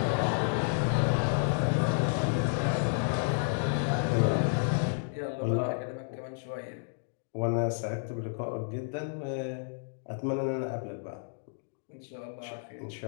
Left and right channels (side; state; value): right; silent; digital silence